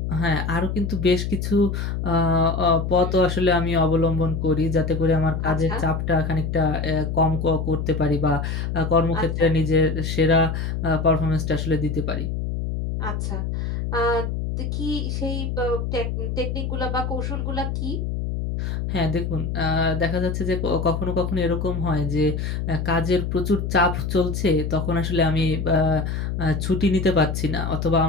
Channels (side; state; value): left; noise; hum, 2 dB below the sound